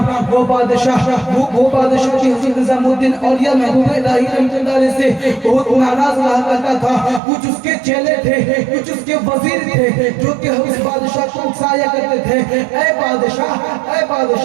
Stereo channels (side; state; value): left; drops out; at 7.2 s